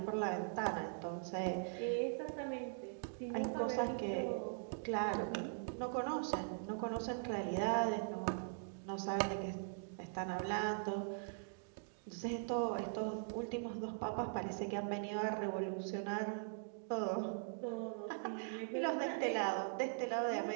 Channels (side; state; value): left; silent; digital silence